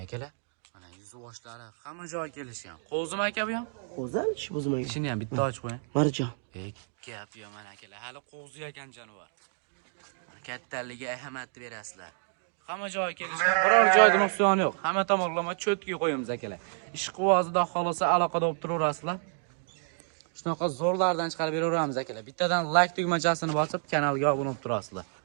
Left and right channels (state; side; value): silent; left; 58 dB below the other